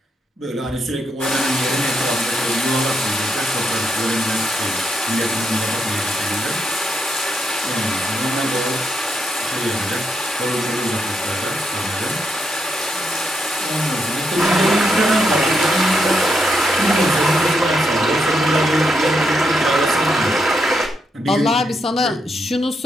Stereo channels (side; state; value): both; normal; correlation 0.80